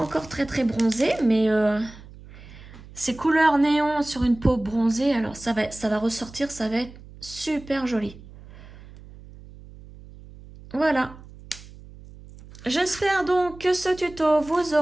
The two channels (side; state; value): right; noise; hum, 19 dB below the sound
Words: très bronzée, mais ces couleurs néon sur une peau bronzée, alors ça va ressortir, ça va être super joli. Voilà. J'espère donc que ce tuto vous